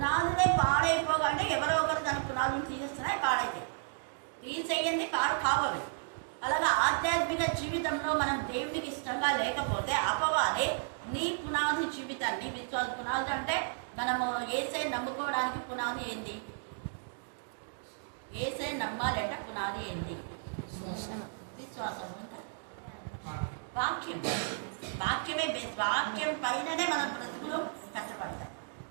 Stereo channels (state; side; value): silent; left; digital silence